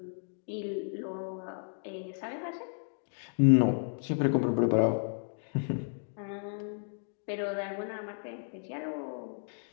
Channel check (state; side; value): silent; right; digital silence